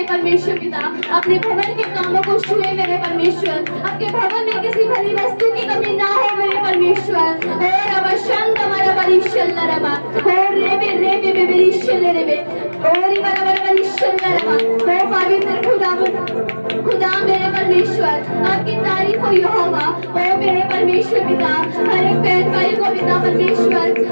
परमेश्वर पिता, अपने भवन के कामों को छुए मेरे परमेश्वर, आपके भवन में किसी भली वस्तु की कमी ना हो मेरे परमेश्वर, और अब शांत हमारा भविष्य ले रे और रे भविष्य ले रे और ये बड़ा भविष्य ले रे ओ पवित्र खुदा मेरे परमेश्वर आपकी तारीफ हो यहोवा, ओ मेरे परमेश्वर पिता, हर एक बहन भाई को पिता परमेश्वर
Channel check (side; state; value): both; inverted; correlation -1.00